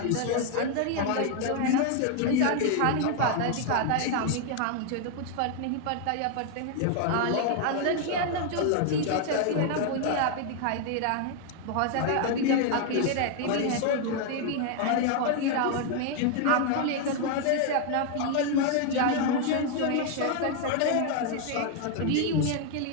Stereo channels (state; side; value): different; both; correlation 0.00